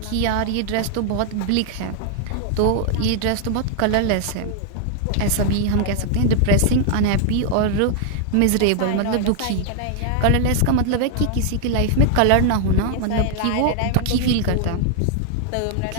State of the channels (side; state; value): both; different; correlation -0.01